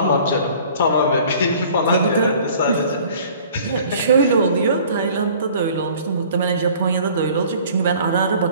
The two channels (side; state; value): both; inverted; correlation -0.51